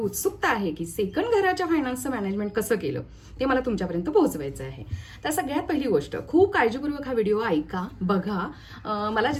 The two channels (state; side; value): identical; both; correlation 1.00